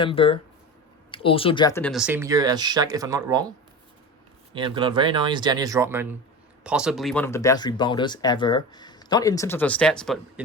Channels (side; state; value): both; normal; correlation 0.28